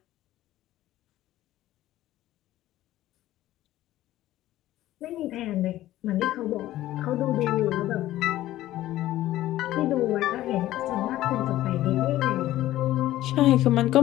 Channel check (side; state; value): right; quieter; 14.8 dB